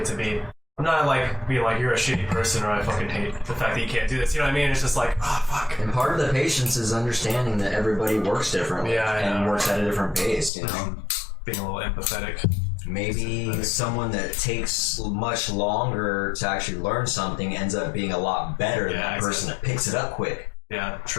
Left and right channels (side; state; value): right; drops out; at 10.5 s